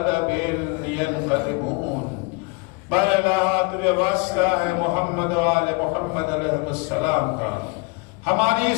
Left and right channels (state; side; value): quieter; right; 29.7 dB